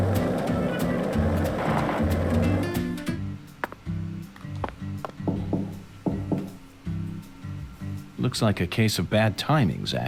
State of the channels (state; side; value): identical; both; correlation 1.00